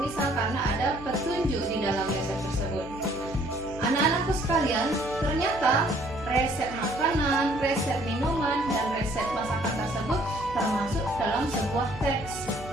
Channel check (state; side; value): noise; right; hum, 15 dB below the sound